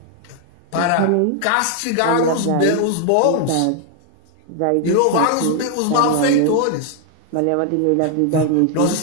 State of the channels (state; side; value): different; both; correlation 0.00